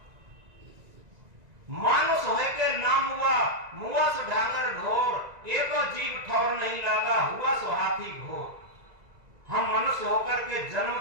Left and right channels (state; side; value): late; left; 1.9 ms